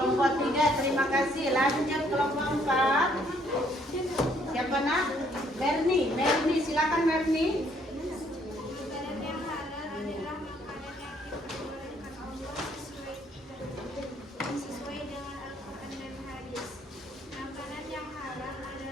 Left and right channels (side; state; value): both; normal; correlation 0.66